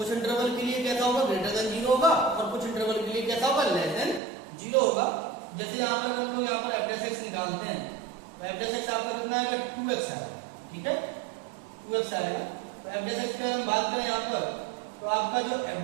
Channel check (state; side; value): drops out; left; at 4.2 s